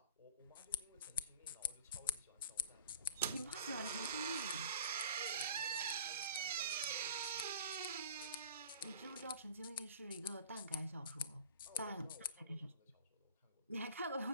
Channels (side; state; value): both; inverted; correlation -0.44